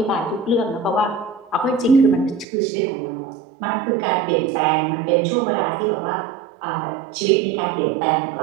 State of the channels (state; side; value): drops out; left; at 2.5 s